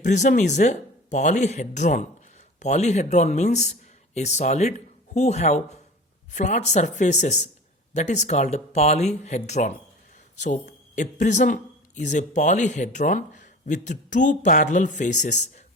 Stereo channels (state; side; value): normal; both; correlation 0.38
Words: is a polyhedron. Polyhedron means a solid who have flat surfaces, that is called polyhedron. So a prism is a polyhedron with two parallel faces